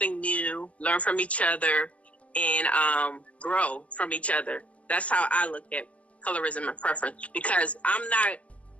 new, learn from each other, and grow from each other. That's how I look at colorism and preference, because I'm not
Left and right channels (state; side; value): late; right; 0.065 ms